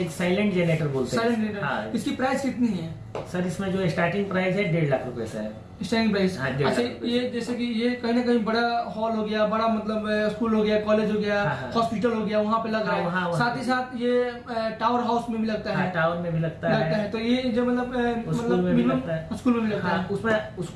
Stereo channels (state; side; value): identical; both; correlation 1.00